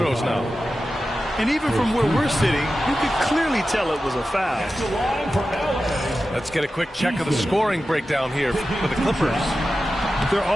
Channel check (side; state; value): both; normal; correlation 0.93